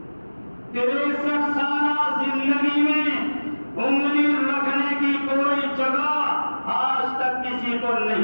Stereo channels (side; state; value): both; inverted; correlation -1.00